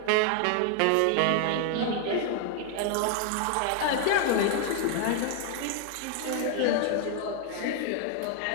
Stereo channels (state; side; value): different; both; correlation 0.00